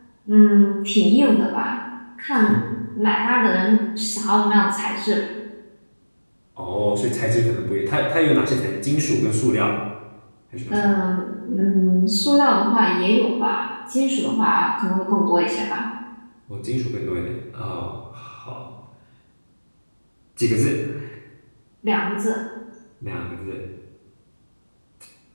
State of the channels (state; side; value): inverted; both; correlation -1.00